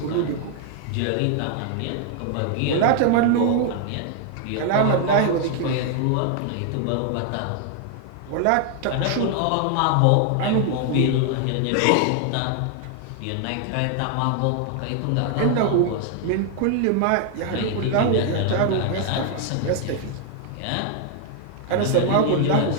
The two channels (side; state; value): both; different; correlation 0.00